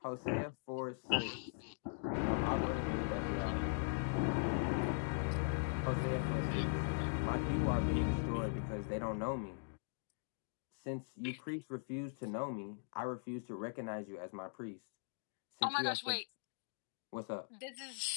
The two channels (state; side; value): silent; right; digital silence